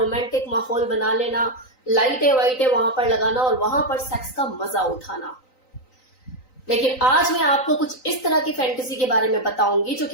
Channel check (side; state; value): right; late; 3.9 ms